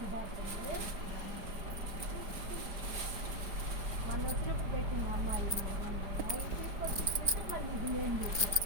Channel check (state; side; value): late; left; 5.0 ms